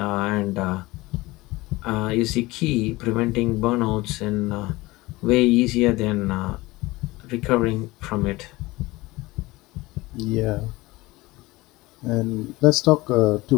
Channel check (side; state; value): right; quieter; 20.7 dB